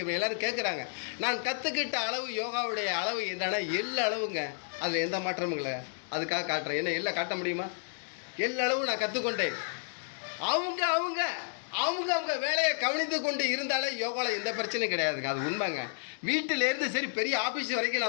எல்லாரும் கேட்குறாங்க. நான் கற்றுக்கிட்ட அளவு யோகாவுடைய அளவு என்னன்னா எள்ளு அளவுங்க, அதில் எந்த மாற்றமும் இல்லை. அதுக்காக காட்டுறேன். என்ன எல்லாம் காட்ட முடியுமா? எள்ளு அளவு நான் கற்றுக்கொண்டேன். அவங்க அவங்க அவங்க அவங்க வேலையை கவனித்து கொண்டு இருந்தாலே யோகாவில் எந்த பிரச்சனையும் கிடையாதுங்க. அது உண்மைங்க. வீட்டிலேருந்து சரி பெரிய ஆஃபீஸ் வரைக்கும்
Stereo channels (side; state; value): right; silent; digital silence